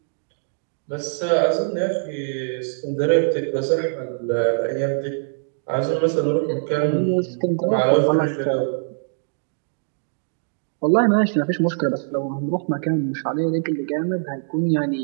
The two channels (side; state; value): left; silent; digital silence